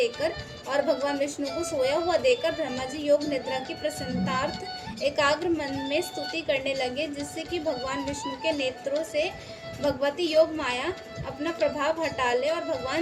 और भगवान विष्णु को सोया हुआ देखकर ब्रह्मा जी योग निद्रा की प्रसन्नतार्थ एकाग्र मन में स्तुति करने लगे, जिससे कि भगवान विष्णु के नेत्रों से भगवती योग माया अपना प्रभाव हटा ले और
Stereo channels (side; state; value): both; identical; correlation 1.00